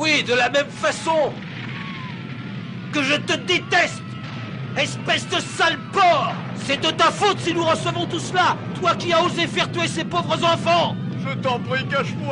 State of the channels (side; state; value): both; identical; correlation 1.00